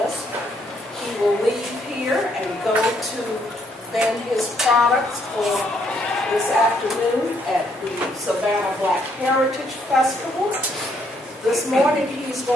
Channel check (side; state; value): both; normal; correlation 0.71